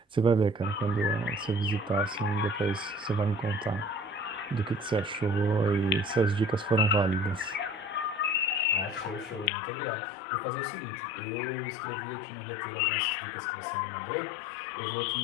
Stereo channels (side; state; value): right; drops out; at 9.5 s